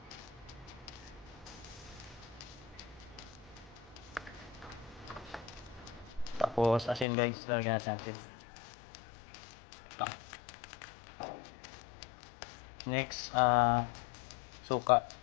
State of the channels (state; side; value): drops out; right; at 7.1 s